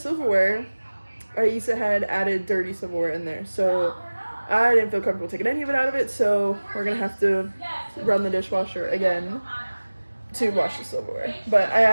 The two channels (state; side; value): inverted; both; correlation -1.00